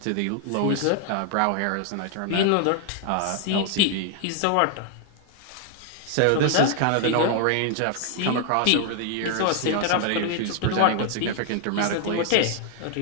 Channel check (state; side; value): different; both; correlation 0.00